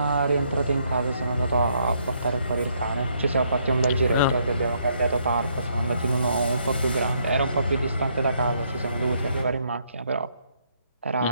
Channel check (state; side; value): inverted; both; correlation -0.72